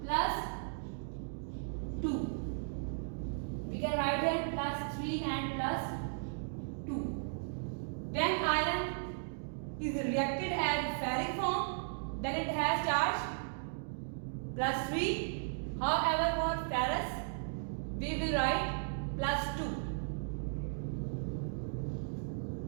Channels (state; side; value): silent; left; digital silence